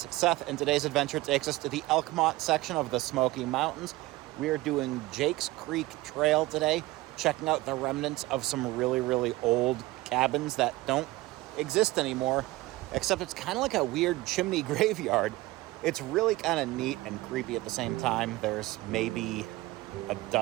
Seth, and today's adventure takes us to the Elkmont section of the Smoky Mountains. We are doing Jake's Creek Trail today, checking out the remnants of some really old cabins that don't exist anymore, except it's kind of like a weird chimney graveyard. It's really kind of neat and creepy at the same time. There's maybe a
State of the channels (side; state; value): left; quieter; 19.2 dB